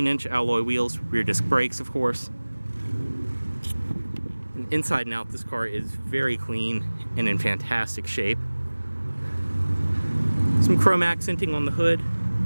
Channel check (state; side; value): inverted; both; correlation -1.00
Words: alloy wheels, rear disc brakes, of course. And inside and out, this car is very clean and in fantastic shape. Some chrome accenting on the hood,